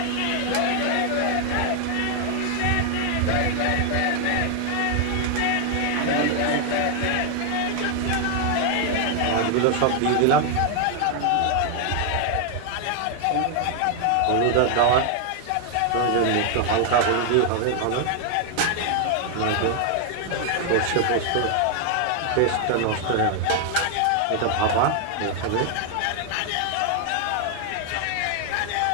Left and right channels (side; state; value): both; different; correlation 0.00